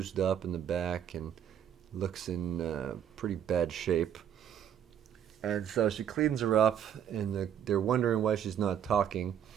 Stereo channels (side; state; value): left; quieter; 9.3 dB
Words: up in the back and looks in pretty bad shape. And so she cleans her up, and they're wondering why she's not talking.